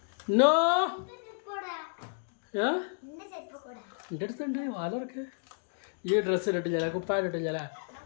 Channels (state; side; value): silent; right; digital silence